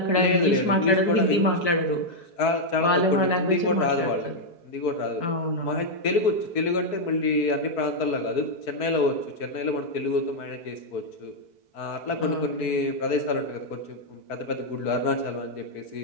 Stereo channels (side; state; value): right; late; 4.6 ms